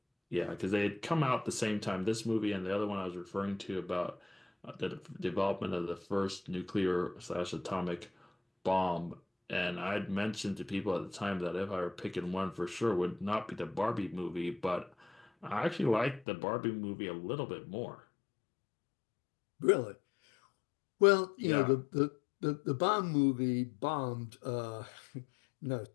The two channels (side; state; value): right; drops out; at 16.2 s